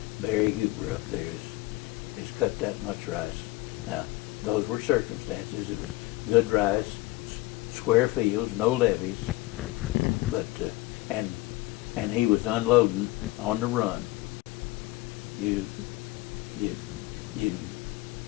Barry Huber up there has cut that much rice. Now, those were circumstances. It was good rice, square fields, no levees, but and he was unloading on the run. You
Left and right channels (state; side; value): quieter; right; 19.5 dB